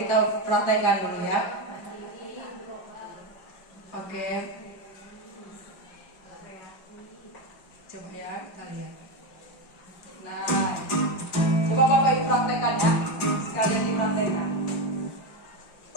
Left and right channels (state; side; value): late; right; 5.7 ms